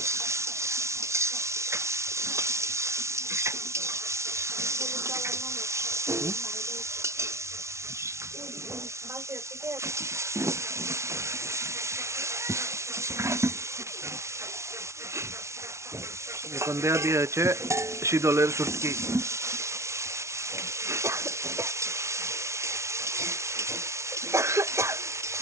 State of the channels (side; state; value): left; late; 0.13 ms